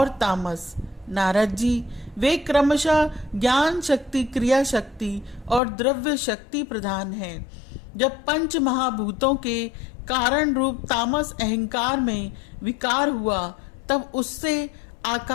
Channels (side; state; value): right; drops out; at 5.6 s